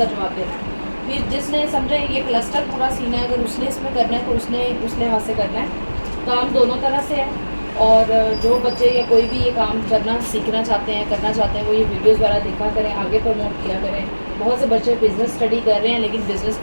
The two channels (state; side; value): inverted; both; correlation -1.00